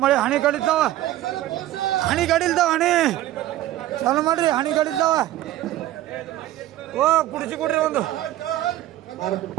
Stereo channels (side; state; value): left; quieter; 14.5 dB